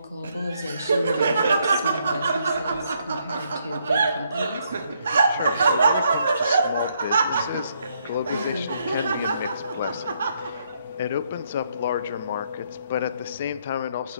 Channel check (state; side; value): inverted; both; correlation -0.73